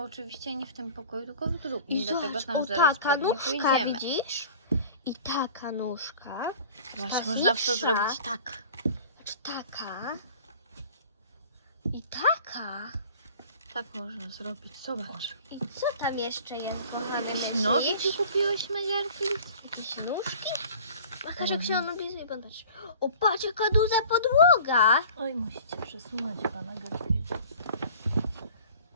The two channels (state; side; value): inverted; both; correlation -0.44